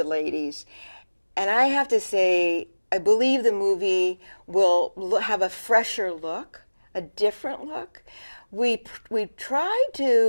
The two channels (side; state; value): both; inverted; correlation -1.00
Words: ladies. And I have to say, I believe the movie will have a fresher look, a different look. We tried